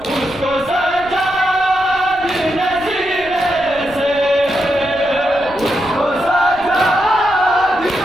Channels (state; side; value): noise; right; rumble, 20 dB below the sound